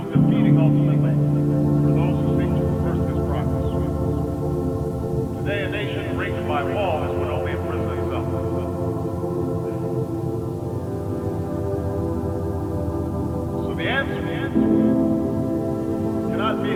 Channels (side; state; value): both; identical; correlation 1.00